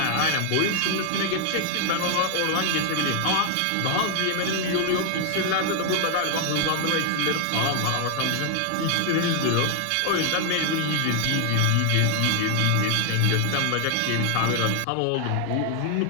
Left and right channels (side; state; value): both; different; correlation 0.00